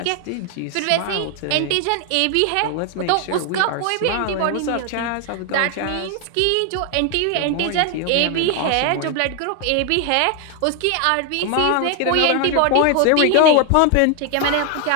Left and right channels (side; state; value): both; different; correlation 0.00